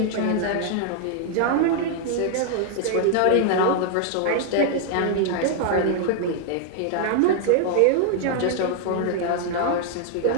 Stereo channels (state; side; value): different; both; correlation 0.00